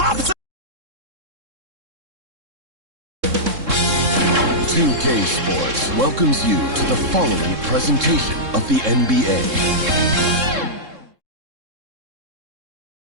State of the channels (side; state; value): left; late; 3.7 ms